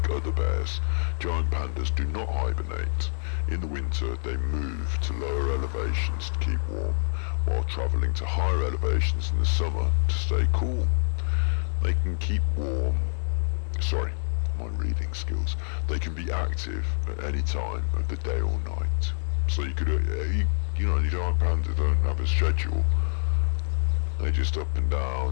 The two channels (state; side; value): silent; right; 60 dB below the other